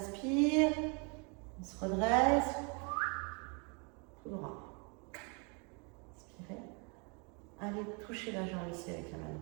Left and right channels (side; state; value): left; quieter; 34.5 dB